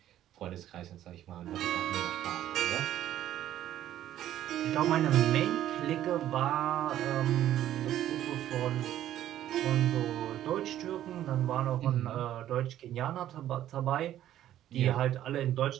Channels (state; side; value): quieter; left; 12.2 dB